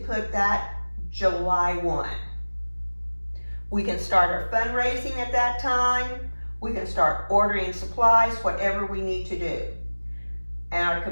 that July 1. We can start our fundraising at that time. We can start ordering supplies, whatever we need to do. And our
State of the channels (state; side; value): inverted; both; correlation -1.00